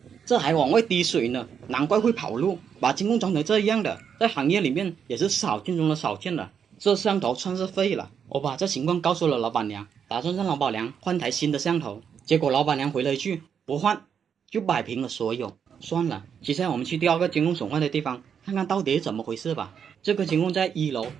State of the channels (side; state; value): left; quieter; 7.5 dB